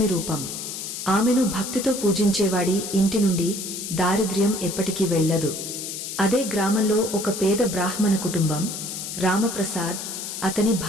రూపం. ఆమెను భక్తితో పూజించేవాడి ఇంటి నుండి దారిద్ర్యం ఎప్పటికీ వెళ్లదు. అదే గ్రామంలో ఒక పేద బ్రాహ్మణ కుటుంబం, రామప్రసాద్, అతని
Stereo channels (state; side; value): noise; left; hiss, 7 dB below the sound